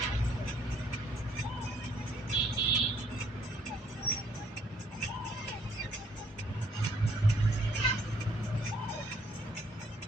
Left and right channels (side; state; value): both; normal; correlation 0.65